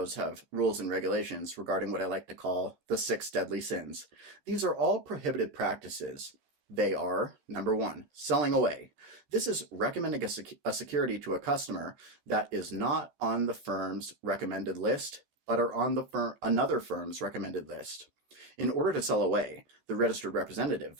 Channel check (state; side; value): late; left; 15 ms